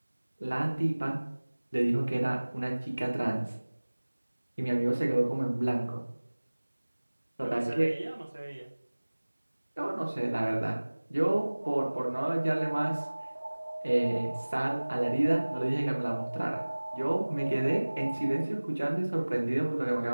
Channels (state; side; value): inverted; both; correlation -1.00